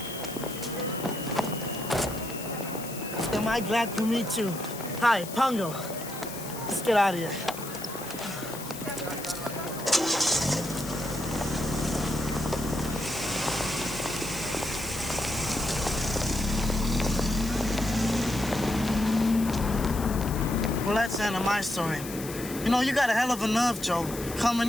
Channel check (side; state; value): left; noise; hiss, 11 dB below the sound